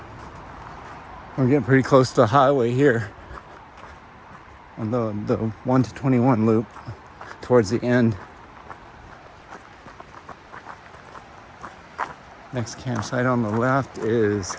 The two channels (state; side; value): identical; both; correlation 1.00